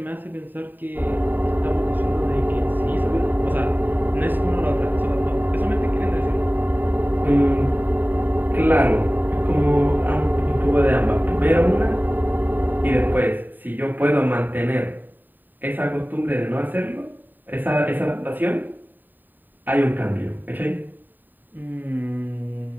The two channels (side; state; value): left; late; 0.090 ms